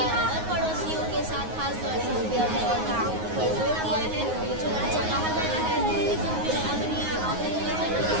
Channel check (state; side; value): late; left; 9.5 ms